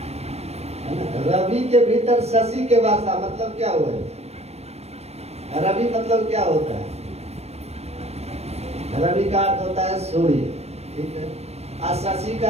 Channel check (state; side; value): late; left; 0.31 ms